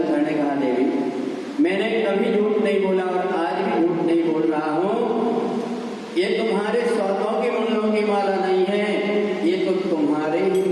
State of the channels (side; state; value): both; identical; correlation 1.00